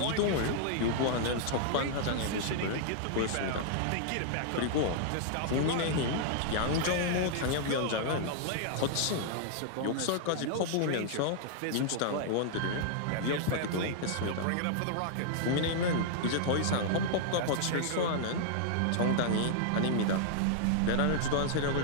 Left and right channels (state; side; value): different; both; correlation -0.01